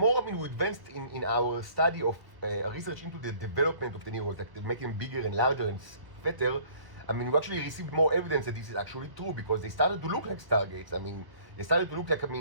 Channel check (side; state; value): left; late; 1.3 ms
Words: I mean we advanced in our study of research into the development of the Neros, like making them bigger and larger and fatter, I mean, we actually received more evidence that this is actually true because they started to look like stargates. I mean, they started to look like, I